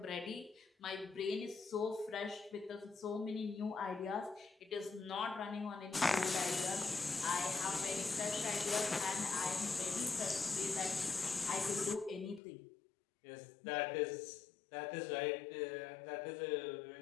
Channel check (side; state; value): right; drops out; at 12.4 s